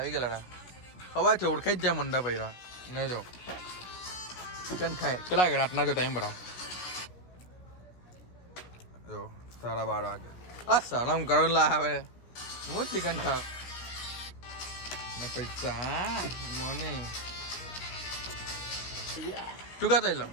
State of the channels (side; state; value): right; late; 16 ms